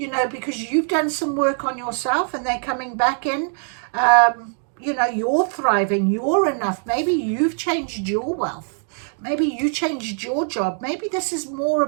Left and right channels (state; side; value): silent; left; 56 dB below the other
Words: know, because you've done some work on yourself and they're coming back in. You know, you're thriving, you're enough. Maybe you've changed your wealth. Maybe you changed your job. Maybe this is more